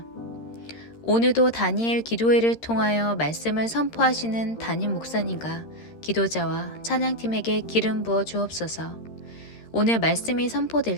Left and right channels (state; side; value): late; right; 13 ms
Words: 오늘도 다니엘 기도회를 통하여 말씀을 선포하시는 담임 목사님과 기도자와 찬양팀에게 기름 부어 주옵소서. 오늘 말씀이 선포될